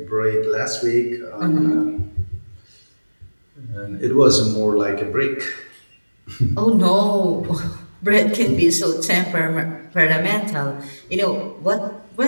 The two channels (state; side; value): inverted; both; correlation -1.00